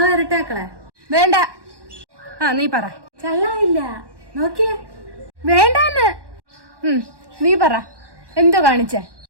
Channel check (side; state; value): left; late; 1.1 ms